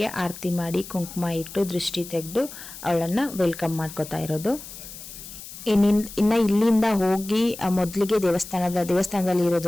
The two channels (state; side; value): noise; left; hiss, 14 dB below the sound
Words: ಆರತಿ ಮಾಡಿ ಕುಂಕುಮ ಇಟ್ಟು ದೃಷ್ಟಿ ತೆಗೆದು ಅವಳನ್ನ ವೆಲ್ಕಮ್ ಮಾಡ್ಕೋತಾ ಇರೋದು. ಇನ್ನ ಇಲ್ಲಿಂದ ಹೋಗಿ ಮೊದಲಿಗೆ ದೇವಸ್ಥಾನದಲ್ಲಿ